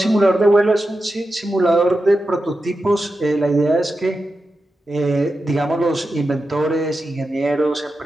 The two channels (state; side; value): normal; both; correlation 0.90